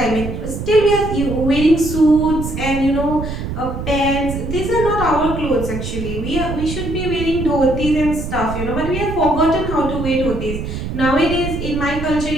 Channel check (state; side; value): noise; right; rumble, 6 dB below the sound